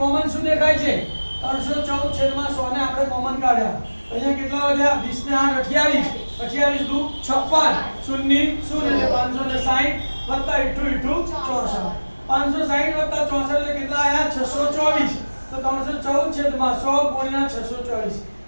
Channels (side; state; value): both; inverted; correlation -1.00